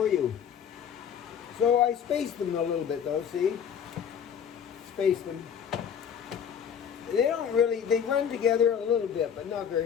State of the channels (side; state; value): right; quieter; 8.0 dB